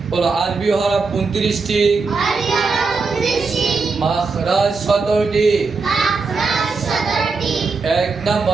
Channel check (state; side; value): quieter; left; 4.4 dB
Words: বলো, আরবি হরফ 29টি, মাখরাজ 17টি। 1